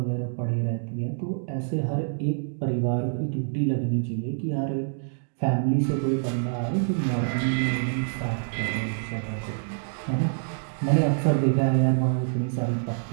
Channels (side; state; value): left; silent; digital silence